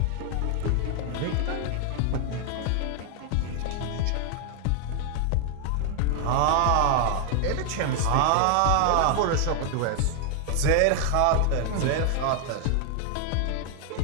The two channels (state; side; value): different; both; correlation 0.00